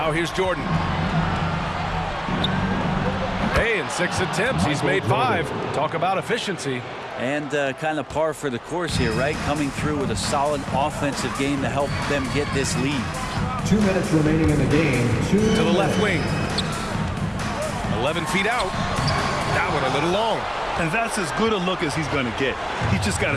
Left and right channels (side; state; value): both; identical; correlation 1.00